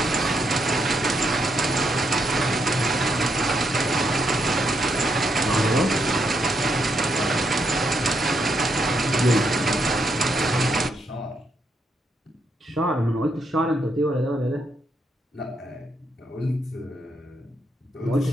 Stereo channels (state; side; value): normal; both; correlation 0.78